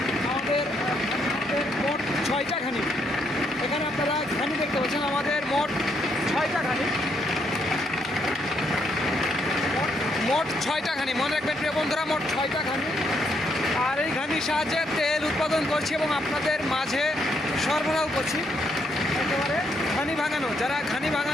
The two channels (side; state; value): both; normal; correlation 0.75